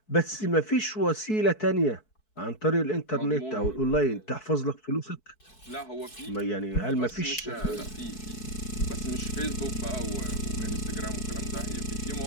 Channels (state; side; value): late; right; 4.6 ms